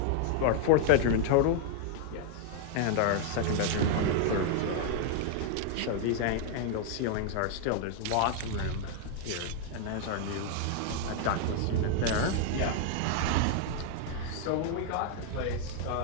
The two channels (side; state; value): both; different; correlation 0.00